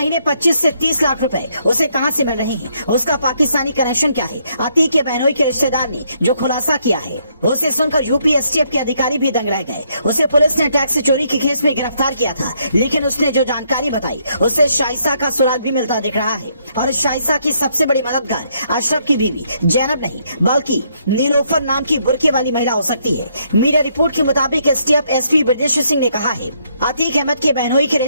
25 से 30 लाख रुपए उसे कहां से मिल रहे हैं, उसका पाकिस्तानी कनेक्शन क्या है। अतीक के बहनोई के रिश्तेदार ने जो खुलासा किया है उसे सुनकर यूपी एसटीएफ के अधिकारी भी दंग रह गए। उसे पुलिस ने टैक्स चोरी के केस में गिरफ्तार किया था, लेकिन उसने जो जानकारी बताई उससे शाइसा का सुराग भी मिलता दिख रहा है। और शाइसा की सबसे बड़ी मददगार अशरफ की बीवी जैनब नहीं बल्कि नीलोफर नाम की बुर्के वाली महिला हो सकती है। मीडिया रिपोर्ट के मुताबिक एसटीएफ एसपी ब्रजेश सिंह ने कहा है अतीक अहमद के बहनोई के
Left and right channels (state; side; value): inverted; both; correlation -0.72